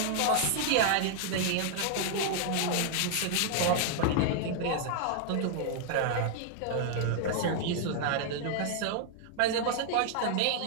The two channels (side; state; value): both; different; correlation -0.01